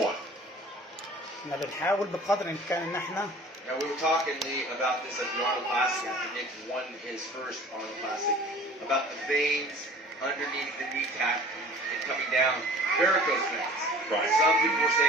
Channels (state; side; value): normal; both; correlation 0.45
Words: احنا بنحاول بقدر الامكان ان احنا Now, we were talking, Lee, about this at the Arnold Classic after Nick won his first Arnold Classic, about the veins underneath the kneecap and coming down, varicose veins. Right. Some people were